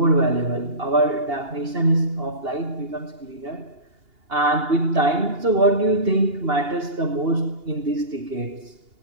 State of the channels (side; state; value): left; late; 2.8 ms